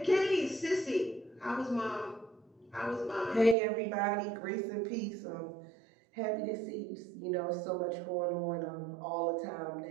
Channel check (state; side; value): drops out; left; at 3.6 s